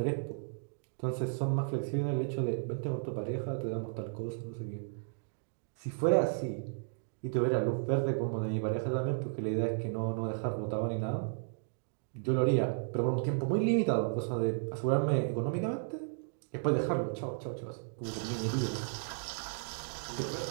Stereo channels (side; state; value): left; silent; digital silence